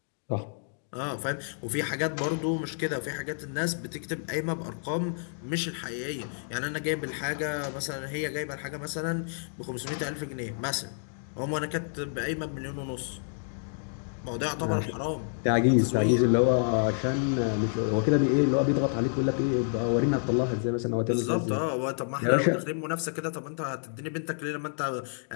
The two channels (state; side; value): silent; right; digital silence